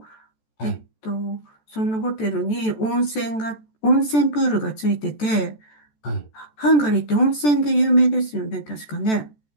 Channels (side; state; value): right; late; 14 ms